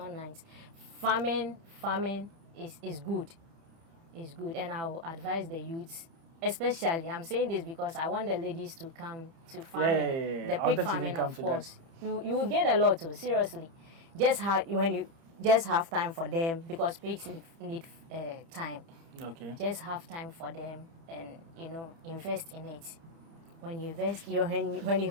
nice. Farming is good. It's good. And I will advise the youths, especially, I'm saying this because I want the ladies to come to farming. The pig farming, of course. You will gain a lot too, seriously. When you just have time for them, because pigs need time. Okay. Just have time for them and invest in it. When you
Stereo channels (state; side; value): late; left; 30 ms